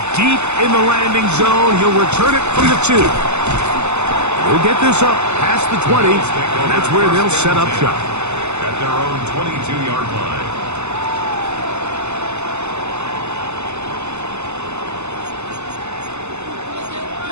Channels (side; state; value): left; late; 0.82 ms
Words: deep in the landing zone. He'll return it from the 2. He'll get this up past the 20, and that's where they'll set up shop. At their own 22-yard line.